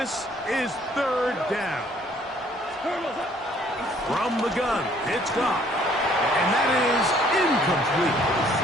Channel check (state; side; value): normal; both; correlation 0.61